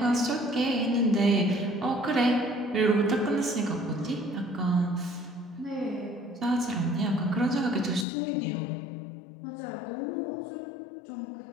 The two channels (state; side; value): drops out; right; at 8.1 s